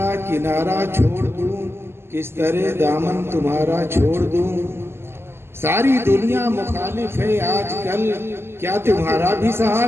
کنارہ چھوڑ دوں، کس طرح دامن تمہارا چھوڑ دوں، ساری دنیا مخالف ہے آج کل، کیا تمہارا بھی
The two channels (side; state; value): left; late; 0.12 ms